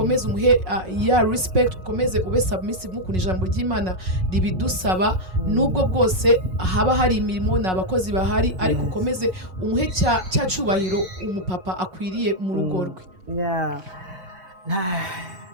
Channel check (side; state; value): left; late; 5.4 ms